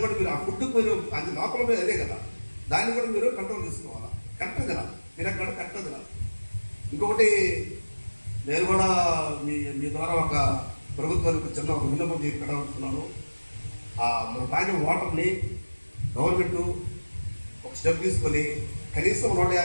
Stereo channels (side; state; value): both; inverted; correlation -1.00